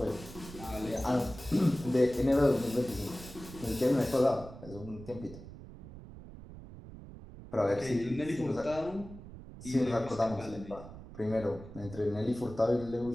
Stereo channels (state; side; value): noise; right; rumble, 15 dB below the sound